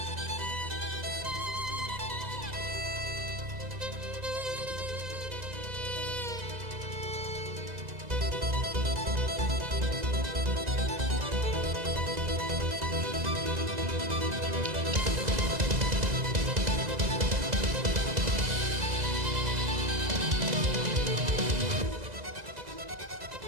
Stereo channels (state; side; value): late; left; 2.0 ms